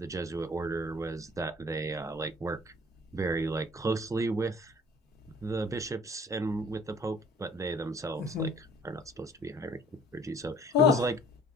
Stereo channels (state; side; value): normal; both; correlation 0.53